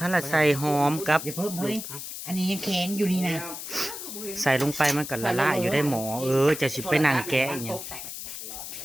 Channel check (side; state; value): left; noise; hiss, 9 dB below the sound